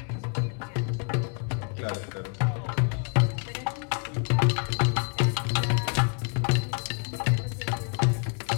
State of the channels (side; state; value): right; quieter; 38.1 dB